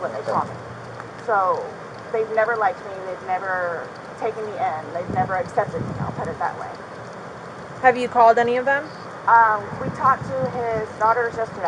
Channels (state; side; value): identical; both; correlation 1.00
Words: they call me. So they've never liked me. They've never taken me in. They've never accepted me. I'll put it that way. Have you called any of them? We talked to his daughters